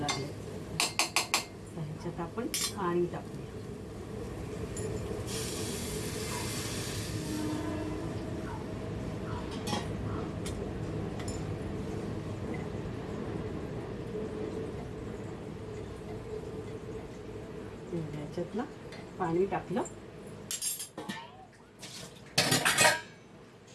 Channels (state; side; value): identical; both; correlation 1.00